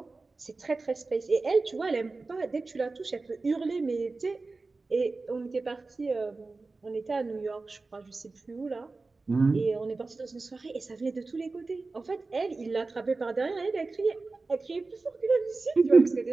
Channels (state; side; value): quieter; left; 3.7 dB